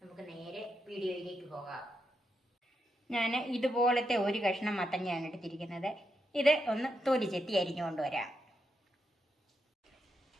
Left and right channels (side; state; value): both; normal; correlation 0.83